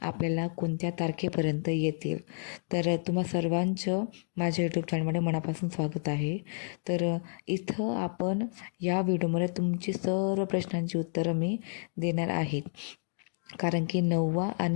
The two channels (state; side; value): silent; right; digital silence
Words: आपल्याला कोणत्या तारखेपर्यंत येतील. तर तुम्हा सर्वांचं माझ्या यूट्यूब चॅनलमध्ये मनापासून स्वागत आहे. तर इथं आपण या व्हिडिओमध्ये तुमची सर्व प्रश्नांची उत्तरं मी देणार आहे. कारण की